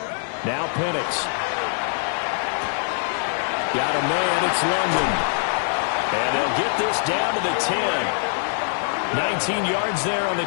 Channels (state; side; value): silent; right; digital silence